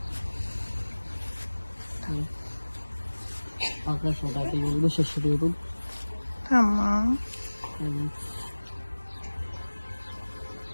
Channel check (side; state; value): both; inverted; correlation -1.00